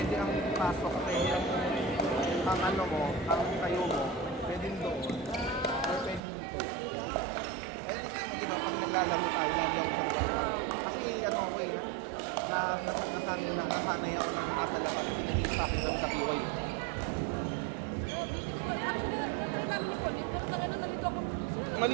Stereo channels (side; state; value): left; drops out; at 6.2 s